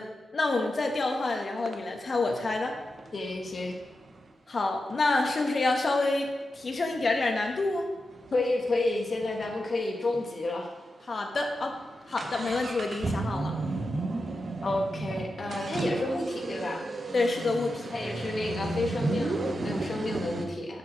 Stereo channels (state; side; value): normal; both; correlation 0.89